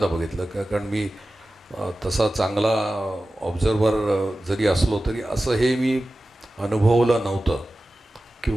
बघितलं. कारण मी तसा चांगला ऑब्झर्वर जरी असलो तरी असं हे मी अनुभवलं नव्हतं.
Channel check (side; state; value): both; normal; correlation 0.95